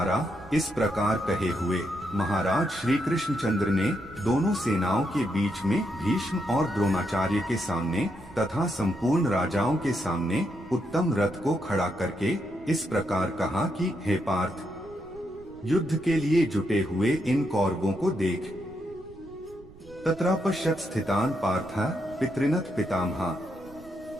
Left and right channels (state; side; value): noise; right; rumble, 22 dB below the sound